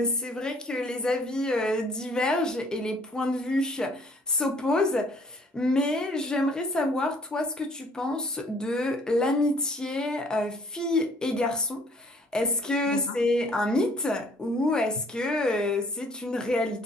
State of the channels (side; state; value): both; normal; correlation 0.59